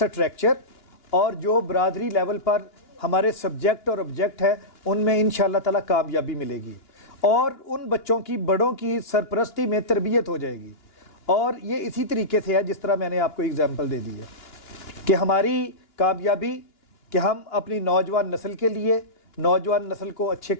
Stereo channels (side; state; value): right; late; 2.9 ms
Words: اور جو برادری لیول پر ہمارے سبجیکٹ اور آبجیکٹ ہے ان میں انشاءاللہ تعالی کامیابی ملے گی، اور ان بچوں کی، بڑوں کی سرپرستی میں تربیت ہو جائے گی۔ اور یہ اسی طریقے سے ہے جس طرح میں نے آپ کو اگزامپل دے دی ہے کہ ہماری کامیابی کہ ہم اپنی نوجوان نسل کے لیے، نوجوان نسل کو اچھے